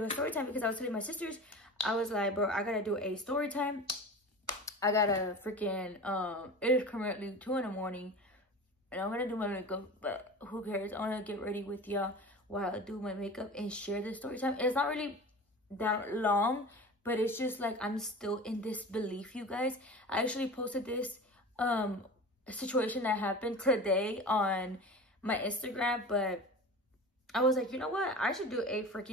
a story time because I was telling my sisters, I was like, bro, I gotta do a story time. I gotta freaking, it is currently 2 in the morning and I'm gonna do my makeup, but who cares? I wanna get ready with y'all while I do my makeup and share the story time. It's not really that long, but it's just like, I'm still in disbelief, you guys. I actually posted this situation that happened today on my Instagram, but I was like, you know what? I should do a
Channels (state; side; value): normal; both; correlation 0.34